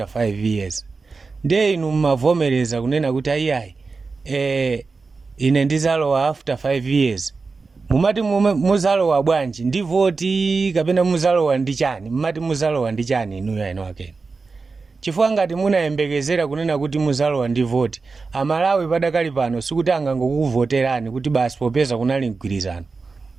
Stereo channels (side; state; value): left; quieter; 4.3 dB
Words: 5 years. Ndiye inu mmavomereza kunena kuti ayi ine ndizalowa after 5 years. Mumati muzalowa bwanji ndi voti kapena muzalowa ndi chani? Mumati muzalowa ndi chani inuyo eno akenu? Chifukwa ngati munayembekezera kunena kuti muzalowa ndi voti, Amalawi padakali pano sikuti angangokuvoterani kuti basi popeza kunali mgwirizano.